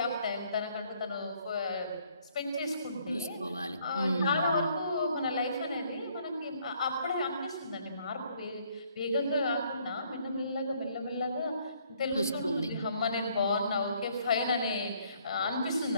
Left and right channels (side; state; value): both; inverted; correlation -0.65